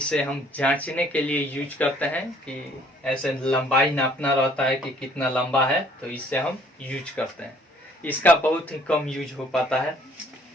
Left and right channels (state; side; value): normal; both; correlation 0.59